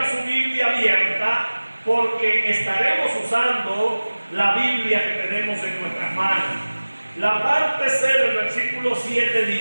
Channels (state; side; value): inverted; both; correlation -1.00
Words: su Biblia abierta porque estaremos usando la Biblia que tenemos en nuestras manos. La parte C del versículo 7